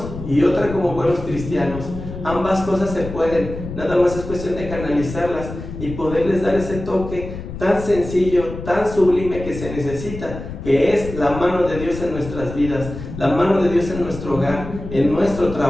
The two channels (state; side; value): noise; left; rumble, 10 dB below the sound